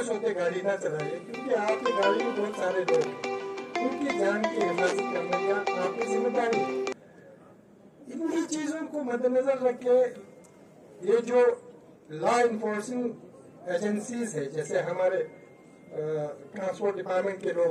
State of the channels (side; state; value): both; identical; correlation 1.00